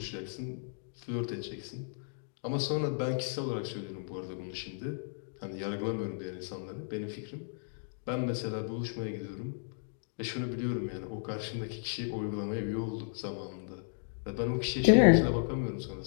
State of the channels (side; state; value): right; silent; digital silence